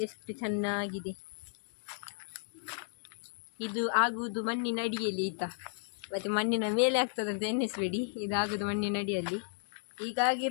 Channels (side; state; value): right; silent; digital silence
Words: ಎಷ್ಟು ಚೆನ್ನಾಗಿದೆ. ಇದು ಆಗುವುದು ಮಣ್ಣಿನ ಅಡಿಯಲ್ಲಿ ಆಯ್ತಾ. ಮತ್ತು ಮಣ್ಣಿನ ಮೇಲೆ ಆಗ್ತದಂತ ಎನ್ನಿಸ್ಬೇಡಿ, ಇದಾಗುವುದು ಮಣ್ಣಿನ ಅಡಿಯಲ್ಲಿ. ಈಗ